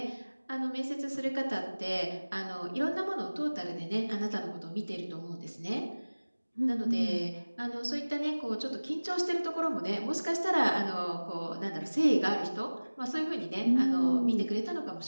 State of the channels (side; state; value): both; inverted; correlation -1.00